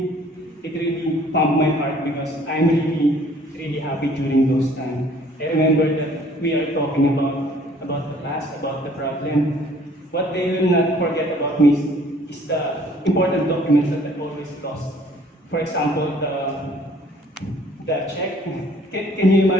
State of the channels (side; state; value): both; normal; correlation 0.57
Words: really pumped my heart because I'm really happy during those times. I remember that we are talking about the past, about the problem. What they will not forget about me is the important documents that I always lost. For example, the check. Can you